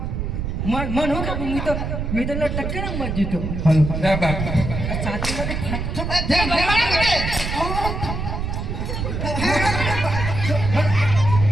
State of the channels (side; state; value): right; noise; rumble, 3 dB below the sound